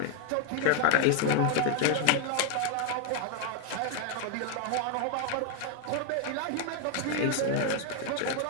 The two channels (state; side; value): different; both; correlation 0.01